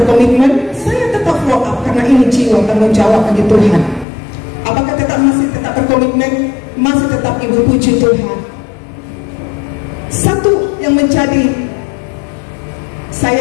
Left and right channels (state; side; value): drops out; right; at 4.0 s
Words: Saya tetap follow up karena ini jiwa tanggung jawab bagi Tuhan. Apakah masih tetap berkomitmen? Masih tetap, Ibu. Puji Tuhan. Satu yang menjadi